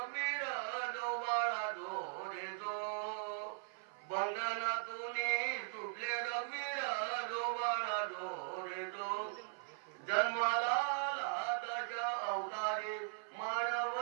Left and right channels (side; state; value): left; silent; 51 dB below the other